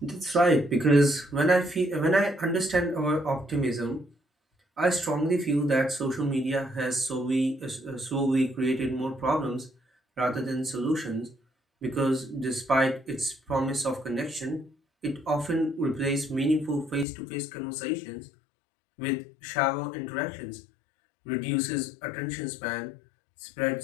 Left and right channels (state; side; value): drops out; right; at 17.1 s